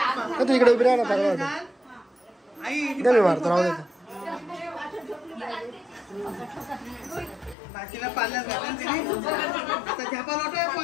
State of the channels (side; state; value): right; drops out; at 7.6 s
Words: तू इकडे उभी राहा ना, मी मारतो. राहू दे. बाकीला पाल्यात घालून तिने आता झेपा लोटा